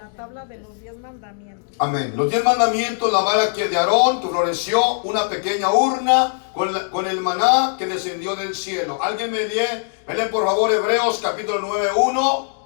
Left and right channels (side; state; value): right; silent; digital silence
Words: tabla de los 10 mandamientos. Amén. Los 10 mandamientos, la vara que de Aarón que floreció, una pequeña urna con el maná que descendió del cielo. Alguien me lee por favor Hebreos capítulo 9:1